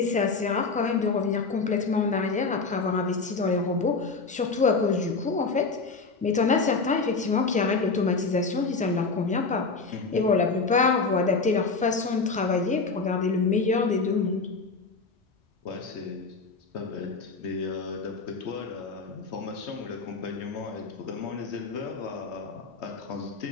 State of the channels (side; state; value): right; quieter; 4.2 dB